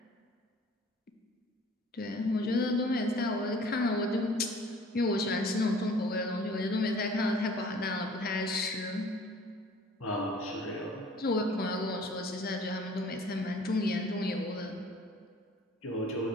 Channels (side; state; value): both; normal; correlation 0.51